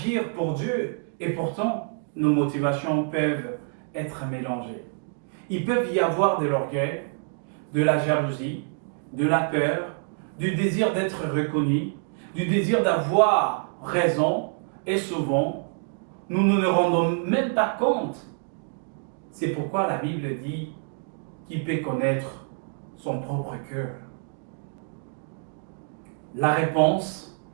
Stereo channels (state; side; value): silent; left; 57 dB below the other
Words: pour Dieu, et pourtant nos motivations peuvent être mélangées. Il peut y avoir de l'orgueil, de la jalousie, de la peur, du désir d'être reconnu, du désir d'avoir raison, et souvent, nous ne nous rendons même pas compte. C'est pourquoi la Bible dit qu'il peut connaître son propre cœur. La réponse